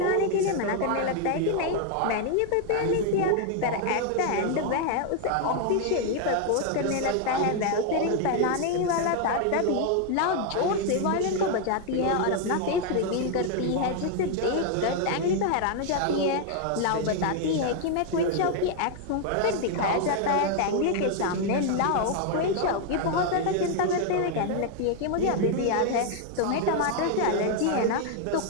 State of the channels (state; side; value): different; both; correlation 0.00